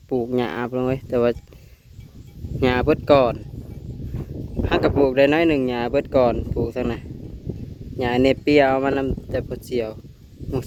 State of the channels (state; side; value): identical; both; correlation 1.00